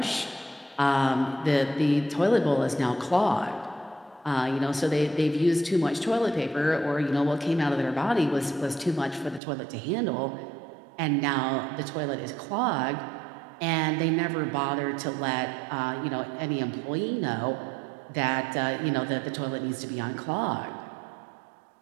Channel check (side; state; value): left; drops out; at 9.4 s